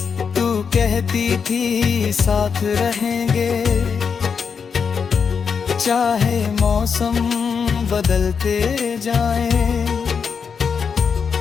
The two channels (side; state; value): right; quieter; 6.2 dB